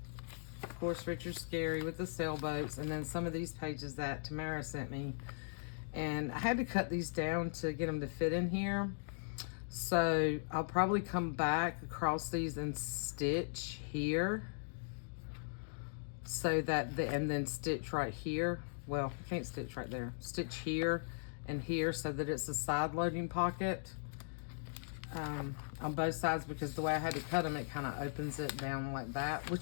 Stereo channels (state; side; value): silent; right; digital silence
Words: Of course, Richard Scarry with the sailboats, and then some of these pages that Tamara sent me, and I had to cut these down to get them to fit in here. So I'll probably come back across these and stitch here, so that and then stitch right here. Well, I can't stitch right there. Stitch here and here so that it's a side loading pocket on both sides, because the way I had to cut them, it kind of opens it down like that, which